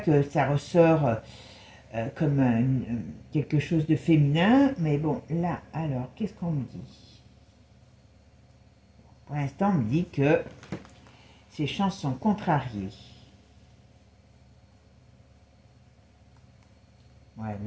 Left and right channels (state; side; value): identical; both; correlation 1.00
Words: ça ressort comme quelque chose de féminin. Mais bon, là, alors, qu'est-ce qu'on me dit? Pour l'instant, on me dit que ses chances sont contrariées. Ouais,